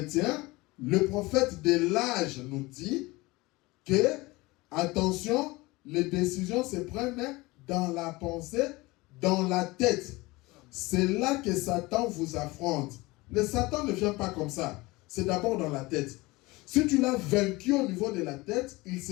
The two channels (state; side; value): quieter; right; 21.9 dB